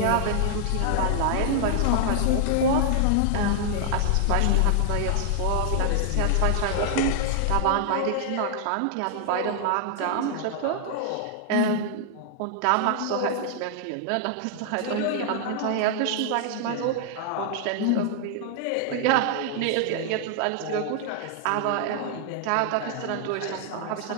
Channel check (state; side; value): different; both; correlation -0.01